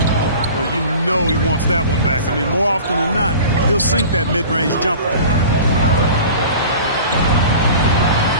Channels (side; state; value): both; inverted; correlation -0.40